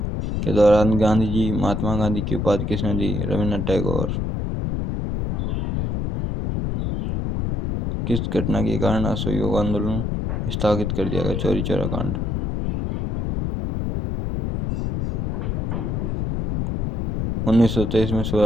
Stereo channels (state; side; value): noise; left; rumble, 1 dB below the sound